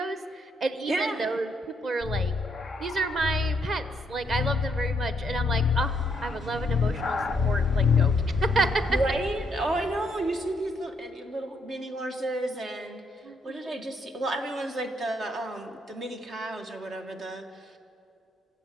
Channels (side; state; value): both; normal; correlation 0.74